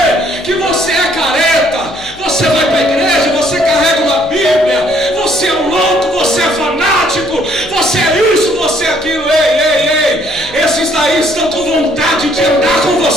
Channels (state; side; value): noise; left; hum, 23 dB below the sound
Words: que você é careta, você vai para a igreja, você carrega uma Bíblia, você é um louco, você é fanático, você é isso, você é aquilo. Ei, esses daí estão com vontade de andar com